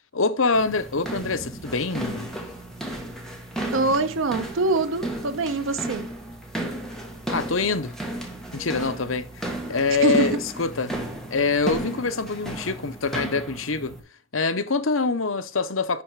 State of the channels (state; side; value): normal; both; correlation -0.10